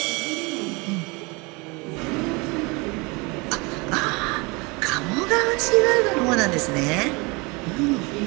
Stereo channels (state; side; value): quieter; left; 27.3 dB